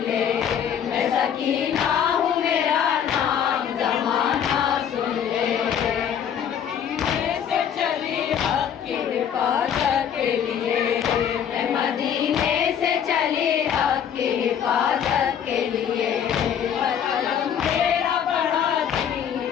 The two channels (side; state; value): right; quieter; 8.7 dB